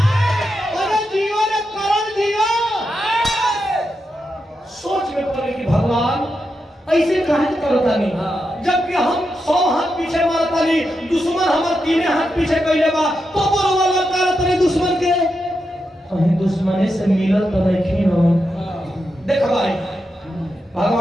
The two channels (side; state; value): both; normal; correlation 0.86